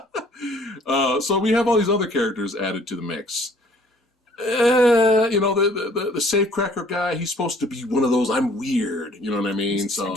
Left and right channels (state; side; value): normal; both; correlation 0.56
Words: So we have all these other characters added to the mix. The safecracker guy, he's supposed to be one of those, I'm weird, you know what I mean? So,